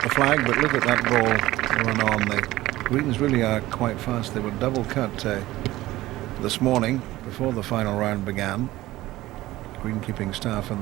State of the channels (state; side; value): quieter; left; 17.0 dB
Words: the flag, but look at that ball run on. The greens really are quite fast. They were double cut this morning before the final round began. Greenkeeping staff